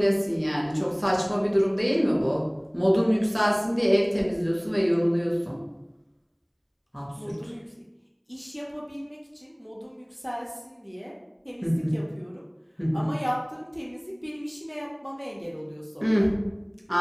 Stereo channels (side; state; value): both; identical; correlation 1.00